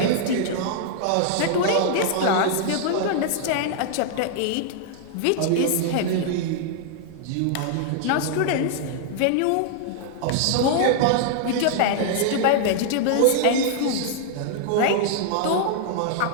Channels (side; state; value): both; different; correlation -0.01